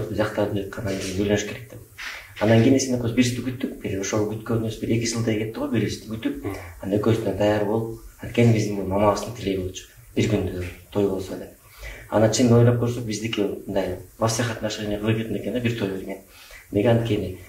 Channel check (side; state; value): both; identical; correlation 1.00